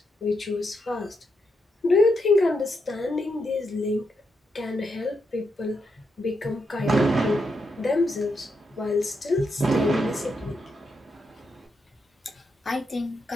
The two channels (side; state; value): both; normal; correlation 0.82